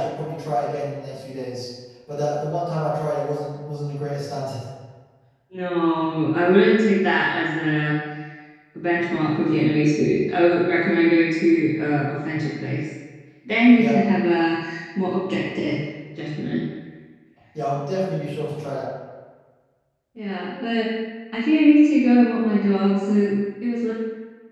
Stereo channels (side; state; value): both; identical; correlation 1.00